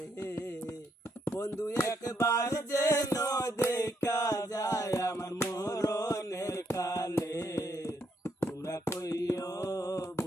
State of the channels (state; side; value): normal; both; correlation 0.75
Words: বন্ধু একবার যেন দেখা যায় আমার মরণের কালে। তোমরা কইও